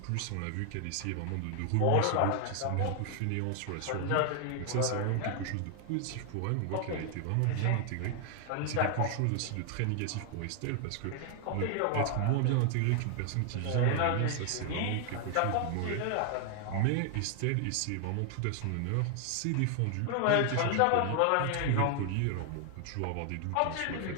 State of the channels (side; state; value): both; different; correlation 0.00